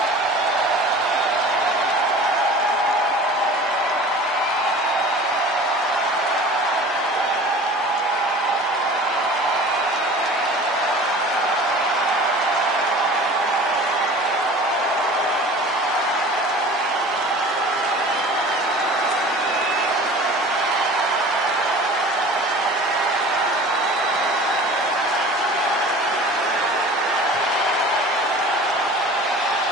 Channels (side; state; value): both; normal; correlation 0.42